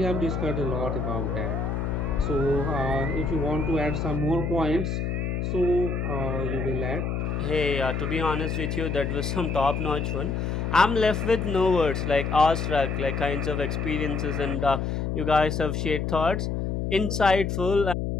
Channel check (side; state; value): left; noise; hum, 1 dB below the sound